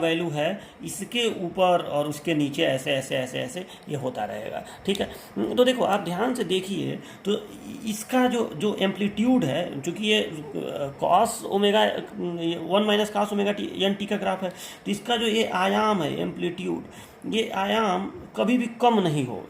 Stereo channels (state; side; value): identical; both; correlation 1.00